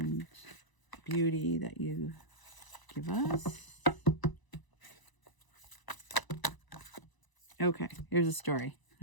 beauty that you give us. Okay, here's a story.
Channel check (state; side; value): late; right; 1.0 ms